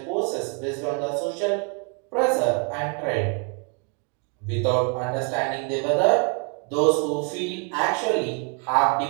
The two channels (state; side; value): quieter; left; 38.5 dB